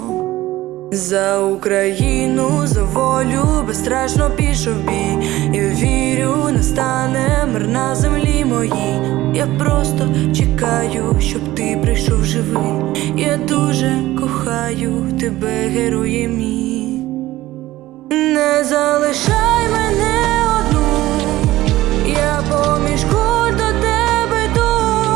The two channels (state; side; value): quieter; left; 16.5 dB